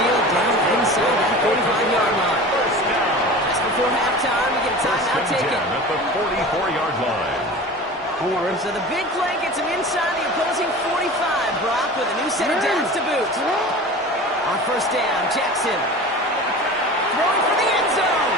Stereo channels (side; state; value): both; normal; correlation 0.36